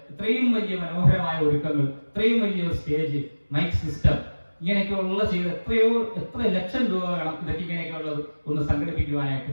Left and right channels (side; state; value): both; inverted; correlation -1.00